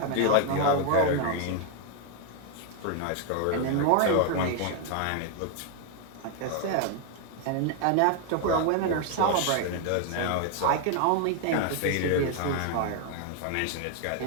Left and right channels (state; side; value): different; both; correlation 0.01